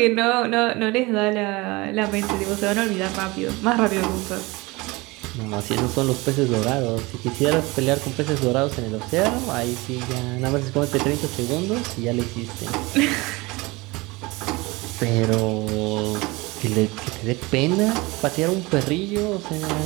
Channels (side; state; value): left; quieter; 23.4 dB